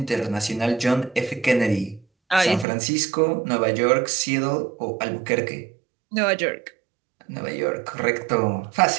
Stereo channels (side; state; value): left; drops out; at 2.7 s